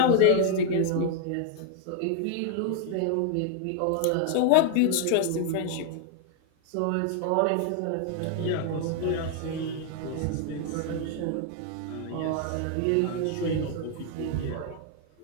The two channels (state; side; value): different; both; correlation 0.00